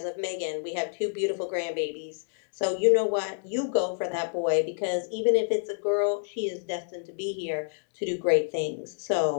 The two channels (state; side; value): silent; right; digital silence